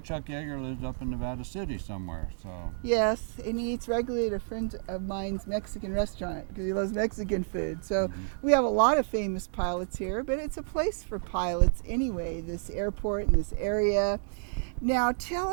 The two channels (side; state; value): left; silent; digital silence